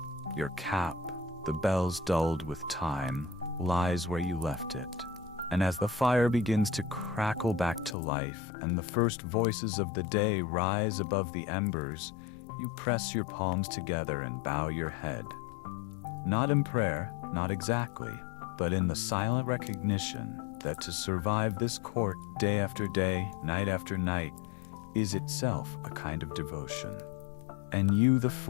Your cap, the bells dulled with time, lies where you left it. And as the fire begins to crackle back to life and the first voices of the day rise above the embers, you press your palms together and bow your head. Not in prayer, not exactly, but in the silent recognition that to survive this court day after day, night after night, is itself a kind of devotion. And you, the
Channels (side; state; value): right; drops out; at 8.0 s